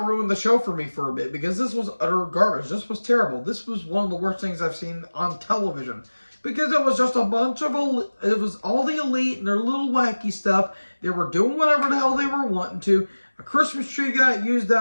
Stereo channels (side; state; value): both; inverted; correlation -1.00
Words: ruined the show for me for a bit, because this was utter garbage. This was terrible. This was one of the worst things I've seen on television, because it was just a bunch of, it was all the Elite and their little wacky stuff. They were doing whatever the hell they were wanting to. A Christmas tree got used